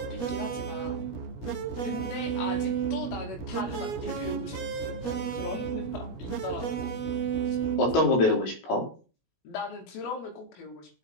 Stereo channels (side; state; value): right; late; 17 ms